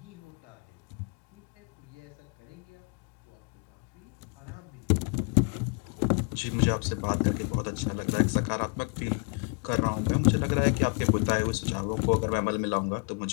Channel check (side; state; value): right; quieter; 35.1 dB